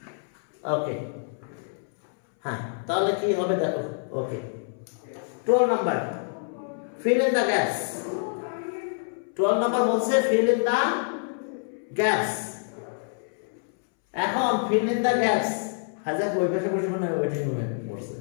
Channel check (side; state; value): right; silent; 60 dB below the other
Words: ওকে, হ্যাঁ, তাহলে কি হবে দেখো। ওকে, 12 number, fill in the gaps। 12 number বলছে fill in the gaps। এখন fill in the gaps, হাজার ওই পাশে বসে মানে ওয়েটিং রুমে বসে।